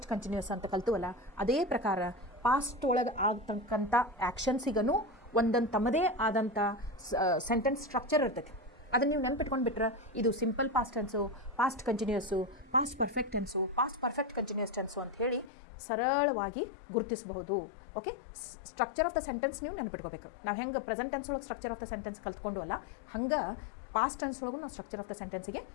ಕಂಟಿನ್ಯೂಯಸ್ ಅಂತ ಕಲ್ತೀವಲ್ಲ, ಅದೇ ಪ್ರಕಾರ ಪಾಸ್ಟ್ ಒಳಗೆ ಆಗ್ತಕ್ಕಂಥ ಆ್ಯಕ್ಷನ್ಸಿಗೂ ಒಂದೊಂದು ತಮ್ಮದೇ ಆದಂಥ ಸೆಂಟೆನ್ಸ್ ಸ್ಟ್ರಕ್ಚರ್ ಇರ್ತೈತಿ. ಅದನ್ನು ನೀವು ನೆನ್ಪಿಟ್ಕೊಂಡು ಬಿಟ್ರೆ ಇದು simple past tens, past continuous, past perfect tens, past perfect continuous tens ಅಂತ ಹೇಳಿ ಸರಳವಾಗಿ ಗುರುತಿಸಬಹುದು. Okay, structure of the sentence ನೀವು ನೆನ್ಪಿಟ್ಕೋಬೇಕು. ನಾವು ಹೆಂಗೆ ಪ್ರೆಸೆಂಟ್ ಟೆನ್ಸ್ ಒಳಗೆ ಸ್ಟ್ರಕ್ಚರ್ ಆಫ್ ದ ಸೆಂಟೆನ್ಸ್ ಕಲ್ತ್ಕೊಂಡು ಅಲ್ಲ, ಹಂಗೆ ಪಾಸ್ಟ್ ಟೆನ್ಸ್ ಒಳಗೂ ನಾವು ಸ್ಟ್ರಕ್ಚರ್ ಆಫ್ ದ ಸೆಂಟೆನ್ಸಿಗೆ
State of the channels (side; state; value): right; drops out; at 15.5 s